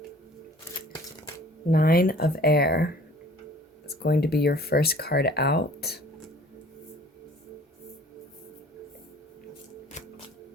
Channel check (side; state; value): both; normal; correlation 0.51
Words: Nine of Air is going to be your first card out.